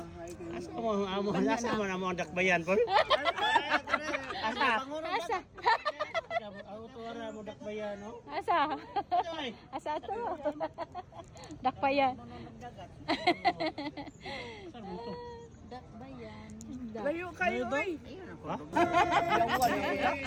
Asa mo ang dakbayan po? Asa? Asa? Ako tuwara mo dakbayan no? Asa? Asa to? Dakpayan. Saan mo to? Dakbayan. Layo kayo oy. Ha?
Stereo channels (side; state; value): both; identical; correlation 1.00